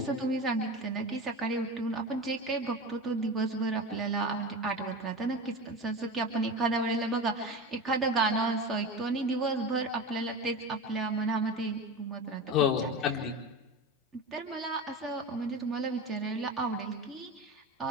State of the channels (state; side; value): normal; both; correlation 0.27